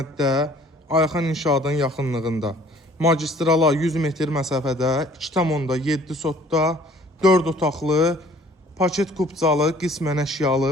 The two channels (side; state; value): both; normal; correlation 0.55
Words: Ayxan İnşaatın yaxınlığında magistrala 100 metr məsafədə 2,7 sotda 4 otaqlı, paket kupcalı, qismən əşyalı